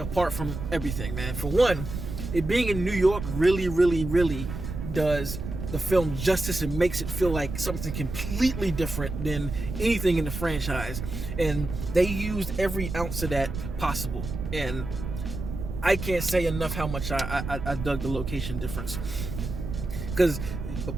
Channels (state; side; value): noise; right; rumble, 7 dB below the sound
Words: from everything, man. For one, it being in New York really, really, really does the film justice and makes it feel like something completely different than anything in the franchise. And they used every ounce of that possible. And I can't say enough how much I dug the location difference. Because